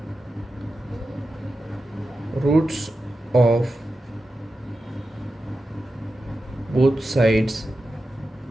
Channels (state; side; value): normal; both; correlation 0.91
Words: रूट्स ऑफ बोथ साइड्स